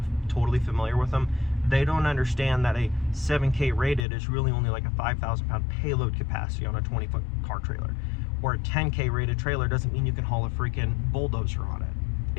totally familiar with them. They don't understand that a 7K rated is really only like a 5,000 pound payload capacity on a 20-foot car trailer. Or a 10K rated trailer doesn't mean you can haul a freaking bulldozer on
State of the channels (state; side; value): drops out; right; at 4.0 s